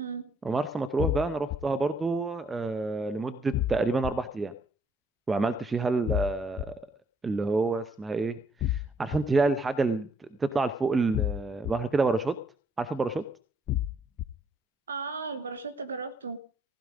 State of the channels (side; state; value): both; normal; correlation 0.69